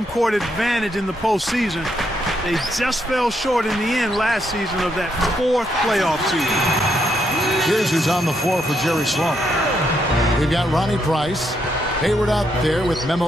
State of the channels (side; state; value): both; normal; correlation 0.77